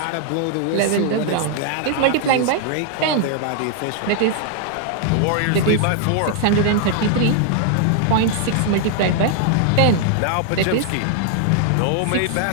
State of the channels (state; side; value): different; both; correlation 0.00